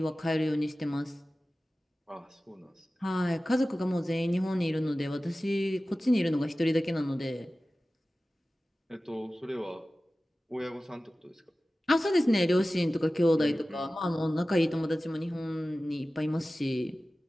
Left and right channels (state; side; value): normal; both; correlation 0.96